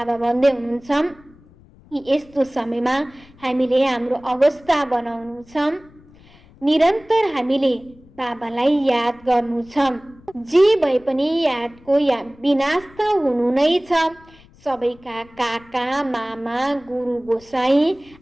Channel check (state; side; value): noise; left; rumble, 26 dB below the sound